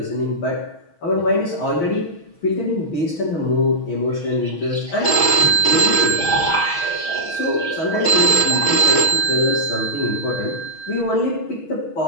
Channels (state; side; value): late; right; 6.3 ms